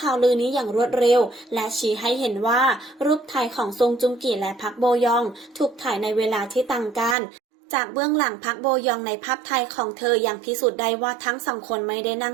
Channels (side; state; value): left; drops out; at 7.2 s